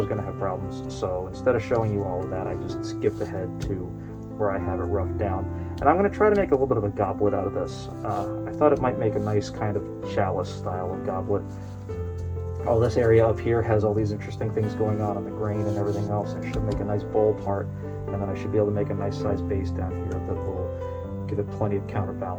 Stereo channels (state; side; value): identical; both; correlation 1.00